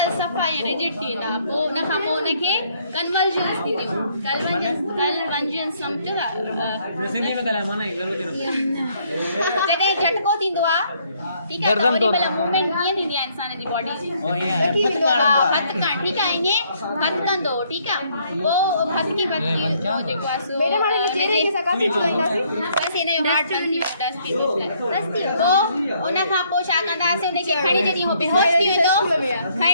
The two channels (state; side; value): inverted; both; correlation -0.67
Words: सफ़ा ऐं रिजिड थी वेंदा पोइ उनखां पोइ उनखे कन्वर्जन्स थींदियूं कन्वर्जन्स सम्झो था जॾहिं झटको थींदो आहे ठीकु आहे त ओॾी महिल मूवमेंट कीअं थींदी आहे इंसान जी बॉडी जी हथु करणु ठीकु आहे ईअं हथु कंदो ठीकु आहे पोइ हथकी जेको आहे सो बसि हिन जो हार्ट बंदि थी पोइ उनखां पोइ छा कंदासीं उनखे खणी जॾहिं उहो बेहोश थी वेंदो